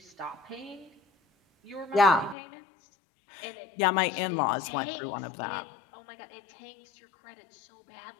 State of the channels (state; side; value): drops out; right; at 2.4 s